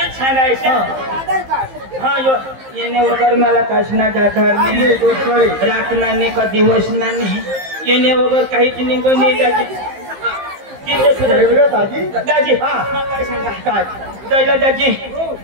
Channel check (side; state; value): left; late; 15 ms